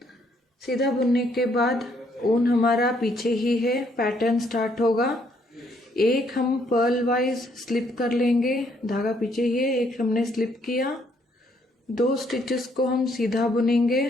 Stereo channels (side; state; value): both; normal; correlation 0.69